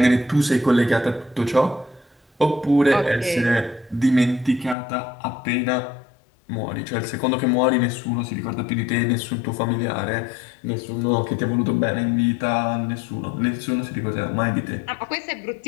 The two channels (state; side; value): drops out; right; at 4.8 s